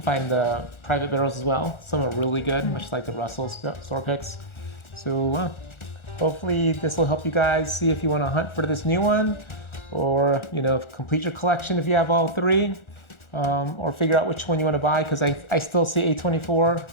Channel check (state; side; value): late; right; 1.4 ms